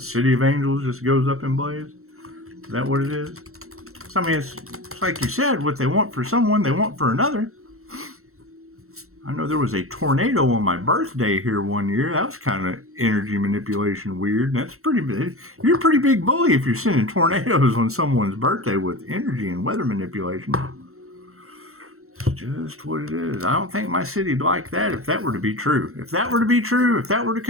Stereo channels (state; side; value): late; left; 0.63 ms